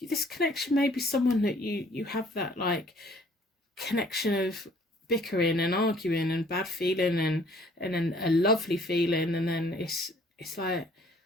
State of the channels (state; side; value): normal; both; correlation 0.58